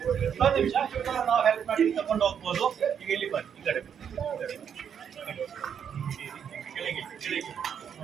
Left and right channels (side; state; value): left; quieter; 8.0 dB